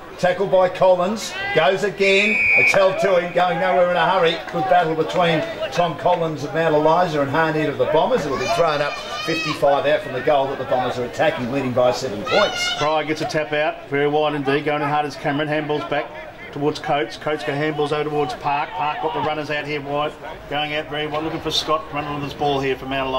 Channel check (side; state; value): both; identical; correlation 1.00